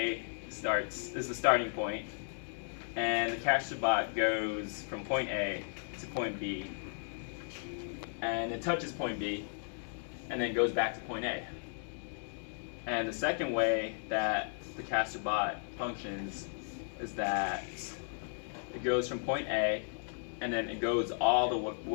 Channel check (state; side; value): silent; right; digital silence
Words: is the starting point, and the Castor goes from point A to point B, and it touches point B, and then goes back to point A. And the second way that the Castor functions is that it goes from point A, and then it goes all the